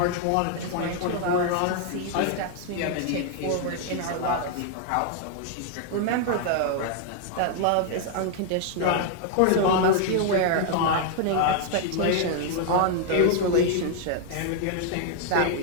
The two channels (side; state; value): both; different; correlation 0.00